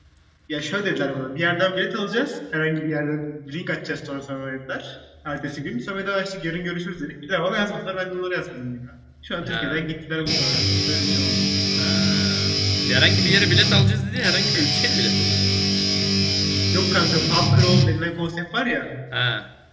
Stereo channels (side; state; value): both; identical; correlation 1.00